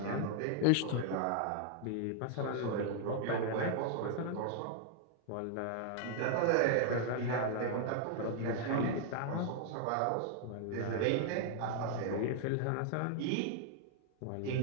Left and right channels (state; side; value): different; both; correlation 0.00